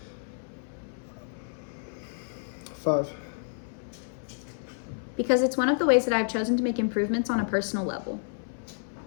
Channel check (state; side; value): silent; right; 58 dB below the other